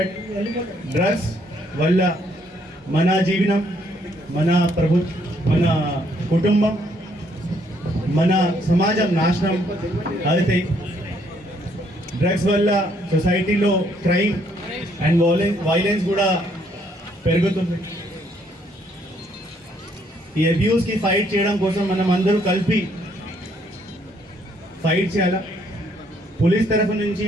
డ్రగ్స్ వల్ల మన జీవనం, మన మన కుటుంబం, మన సమాజం నాశనం అవుతాయి. డ్రగ్స్ వల్ల సొసైటీలో క్రైమ్ అండ్ వైలెన్స్ కూడా పెరుగుతుంది. ఈ అబ్యూస్కి ఫైట్ చేయడం కోసం మనం అందరూ కలిపి ఫైట్ చేయాలి. పోలీస్ తరఫు నుంచి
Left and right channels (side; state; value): both; normal; correlation 0.69